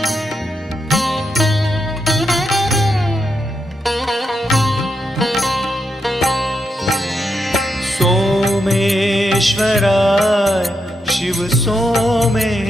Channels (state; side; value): normal; both; correlation 0.83